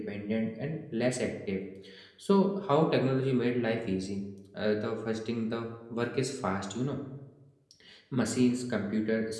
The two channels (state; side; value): identical; both; correlation 1.00